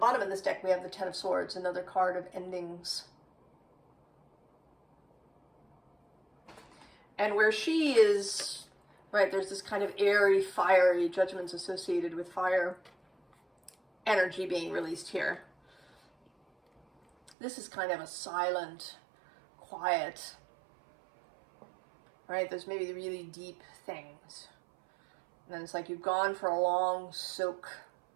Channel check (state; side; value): drops out; left; at 17.4 s